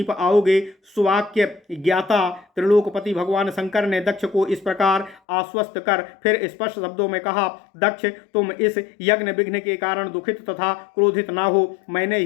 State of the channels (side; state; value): right; drops out; at 5.2 s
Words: आओगे। सुवाक्य ज्ञाता त्रिलोकपति भगवान शंकर ने दक्ष को इस प्रकार आश्वस्त कर फिर स्पष्ट शब्दों में कहा, दक्ष, तुम इस यज्ञ विघ्न के कारण दुखित तथा क्रोधित ना हो। मैंने